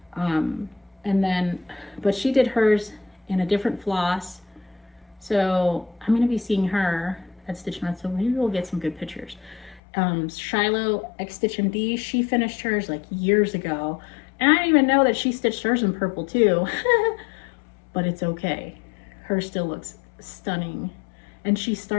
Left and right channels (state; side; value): drops out; right; at 9.8 s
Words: And then, but she did hers in a different floss. So I'm going to be seeing her at Stitch Nuts, so maybe we'll get some good pictures. Shiloh X Stitch MD, she finished hers like years ago. And I didn't even know that she stitched hers in purple too. But it's okay. Hers still looks stunning. And she